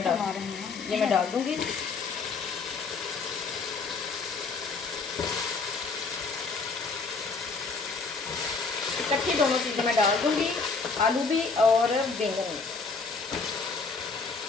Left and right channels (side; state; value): right; quieter; 4.5 dB